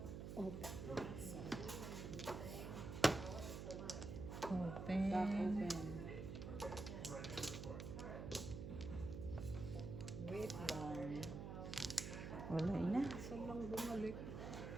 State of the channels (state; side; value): noise; right; hum, 6 dB below the sound